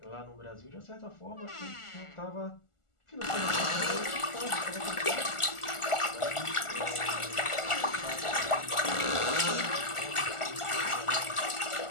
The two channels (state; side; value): late; right; 1.4 ms